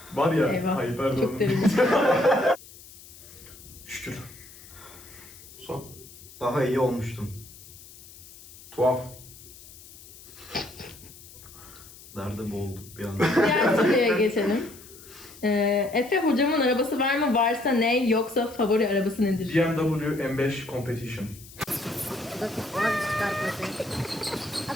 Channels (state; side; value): noise; left; hiss, 19 dB below the sound